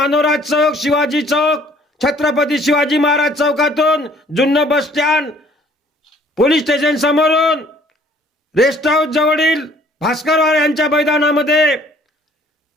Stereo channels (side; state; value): both; normal; correlation 0.57